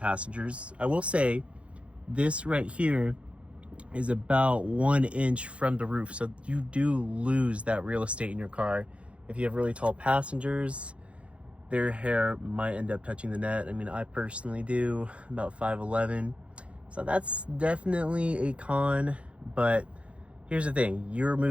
I will say this right here is about 1 inch from the roof, so you do lose that real estate in your car. If you have really tall passengers, their hair might end up touching the net. I mean, I personally do, about 5'11", so that's definitely a con. But here's the thing, you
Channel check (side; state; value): left; late; 0.061 ms